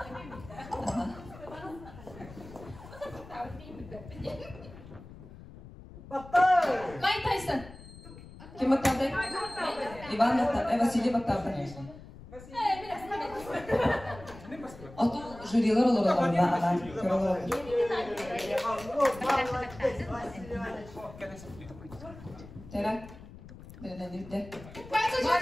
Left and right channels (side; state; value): left; noise; rumble, 17 dB below the sound